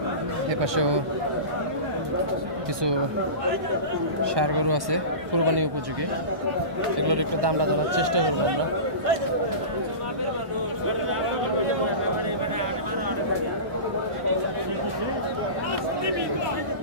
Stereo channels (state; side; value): late; left; 1.1 ms